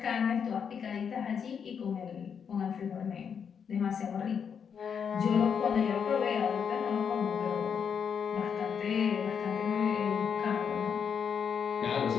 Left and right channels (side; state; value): right; quieter; 7.1 dB